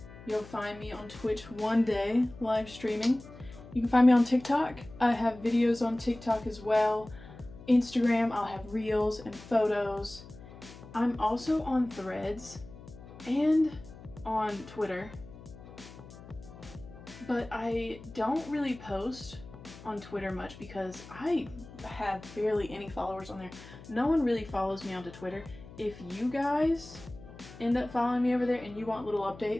You'll find me on Twitch one day live streaming. You can find me on TikTok. I have videos on TikTok as well. Instagram, I'll have reels and photos. I'm also on Threads and on Twitter. But I don't really post on Twitter much because I have barely any followers on there. No one really follows me onto Twitter. If you guys end up following me over there and you want little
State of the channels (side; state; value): left; noise; hum, 17 dB below the sound